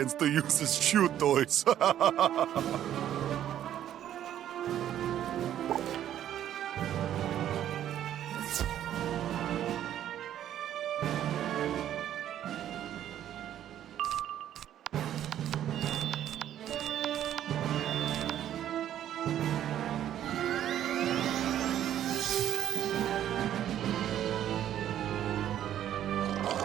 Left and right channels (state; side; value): quieter; left; 11.2 dB